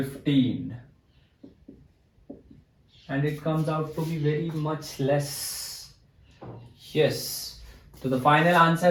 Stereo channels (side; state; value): both; identical; correlation 1.00